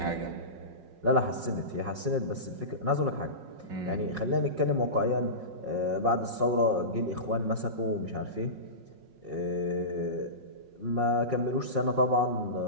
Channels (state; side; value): late; left; 5.5 ms